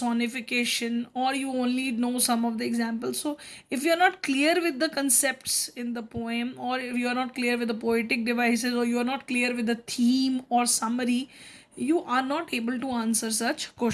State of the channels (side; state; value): both; identical; correlation 1.00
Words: or you only know some of the examples. So if you are not clear with the concepts in the poem, or if you are not clear with the poetic devices, or you are not clear with the theme or summary, you are not able to answer such